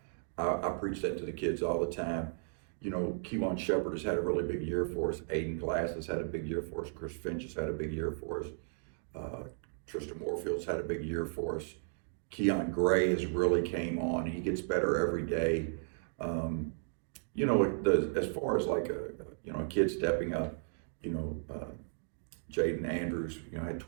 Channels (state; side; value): silent; left; digital silence